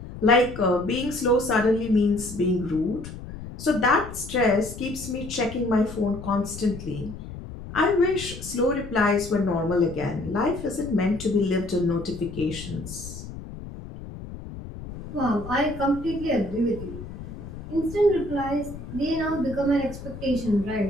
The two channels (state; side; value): noise; left; rumble, 12 dB below the sound